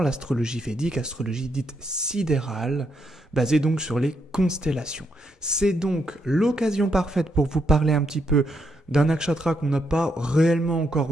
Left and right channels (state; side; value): normal; both; correlation 0.78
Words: védique, astrologie dite sidérale, basée donc sur les constellations. C'est donc l'occasion parfaite pour vous parler un petit peu d'un nakshatra qu'on n'a pas réellement